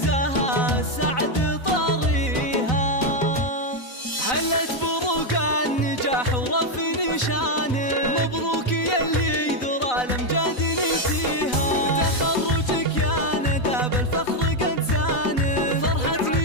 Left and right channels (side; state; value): right; late; 4.0 ms